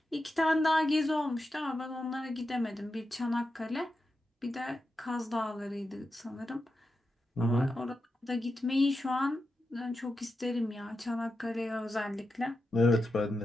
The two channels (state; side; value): normal; both; correlation 0.89